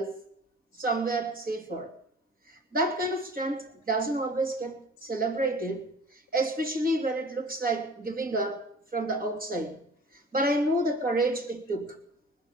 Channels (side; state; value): both; normal; correlation 0.45